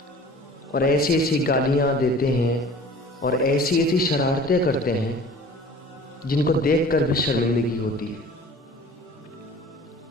اور ایسی ایسی گالیاں دیتے ہیں اور ایسی ایسی شرارتیں کرتے ہیں جن کو دیکھ کر بھی شرمندگی ہوتی ہے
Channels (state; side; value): normal; both; correlation 0.45